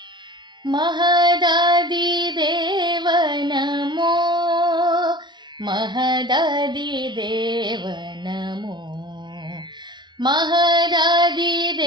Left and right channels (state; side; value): late; left; 0.22 ms